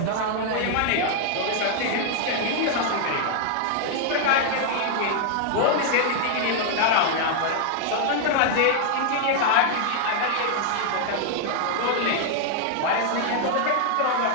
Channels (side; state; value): both; different; correlation 0.00